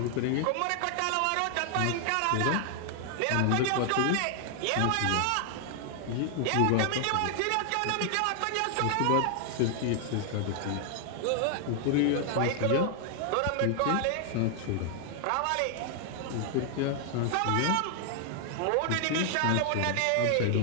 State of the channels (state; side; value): different; both; correlation 0.00